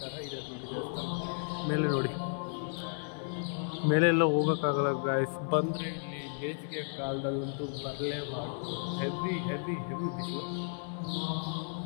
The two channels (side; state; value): right; silent; 56 dB below the other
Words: ಥರ ಇದೆ ನೋಡಿ ದೇವಸ್ಥಾನ. ಮೇಲೆ ನೋಡಿ, ಮೇಲೆಲ್ಲ ಹೋಗೋಕ್ಕಾಗಲ್ಲ ಗಾಯ್ಸ್. ಬಂದರೆ ಇಲ್ಲಿ ಬೇಸಿಗೆ ಕಾಲದಲ್ಲಂತೂ ಬರಲೇಬಾರ್ದು. ಹೆವಿ ಹೆವಿ ಹೆವಿ ಬಿಸಿಲು.